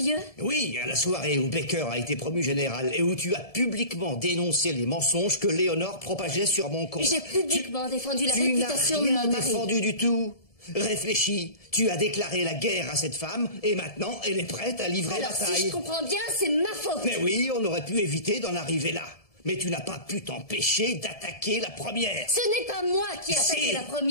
Oui, à la soirée où Baker a été promu général et où tu as publiquement dénoncé les mensonges que Léonore propageait sur mon compte. J'ai publiquement défendu la réputation de mon mari. Tu n'as rien défendu du tout. Réfléchis, tu as déclaré la guerre à cette femme et maintenant elle est prête à livrer la bataille. Alors si je comprends bien, c'est ma faute. Mais oui, on aurait pu éviter d'en arriver là. Mais tu n'as pas pu t'empêcher d'attaquer la première. Ce n'est pas moi qui ai attaqué la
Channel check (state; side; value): late; right; 1.7 ms